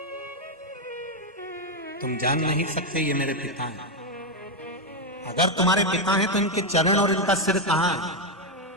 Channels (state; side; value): normal; both; correlation 0.04